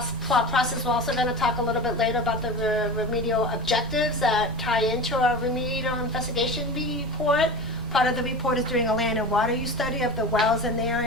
process, we're also going to talk a little bit later about the remedial objectives that tie into our remedial investigation report. Part of the report is doing a land and water use study of the wells in the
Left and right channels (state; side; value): noise; right; rumble, 15 dB below the sound